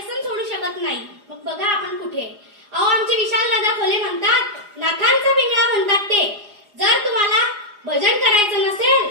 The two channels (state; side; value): late; left; 4.9 ms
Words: सोडू शकत नाही. मग बघा आपण कुठे. अहो आमचे विशाल दादा खोले म्हणतात, नाथांचा पिंगळा म्हणतात ते, जर तुम्हाला भजन करायचं नसेल,